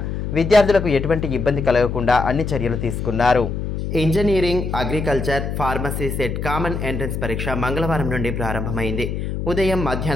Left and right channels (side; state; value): left; noise; hum, 4 dB below the sound